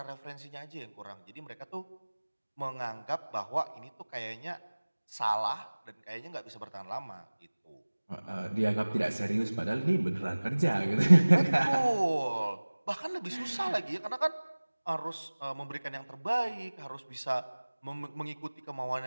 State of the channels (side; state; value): both; inverted; correlation -1.00